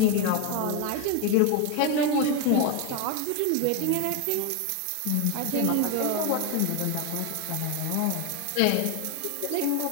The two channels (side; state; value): both; different; correlation 0.02